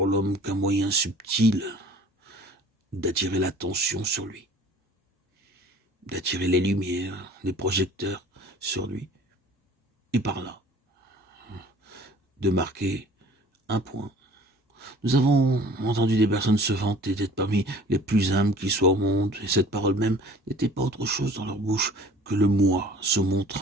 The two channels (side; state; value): both; normal; correlation 0.48